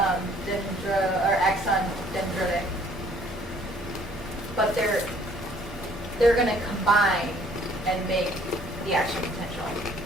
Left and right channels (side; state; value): both; normal; correlation 0.59